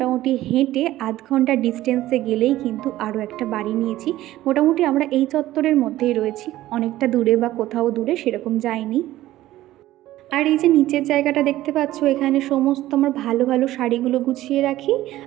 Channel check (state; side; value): quieter; left; 15.2 dB